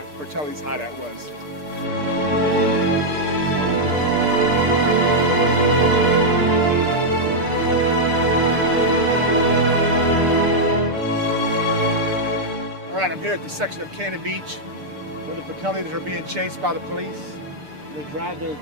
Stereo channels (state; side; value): late; left; 6.7 ms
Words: Fratelli's hideout was. All right, I'm here at the section of Cannon Beach where the Fratellis are being chased by the police. They drive their